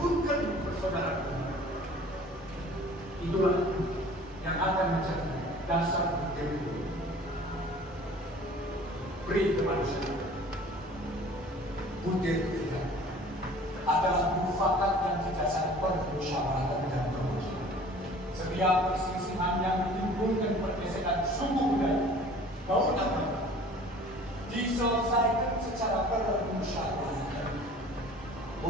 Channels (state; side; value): normal; both; correlation 0.47